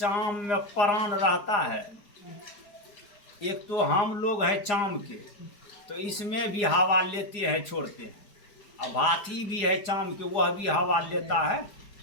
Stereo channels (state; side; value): late; right; 4.9 ms